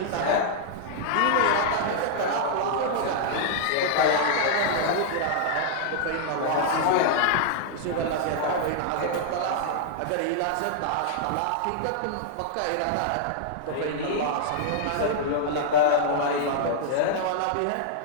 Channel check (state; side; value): different; both; correlation -0.01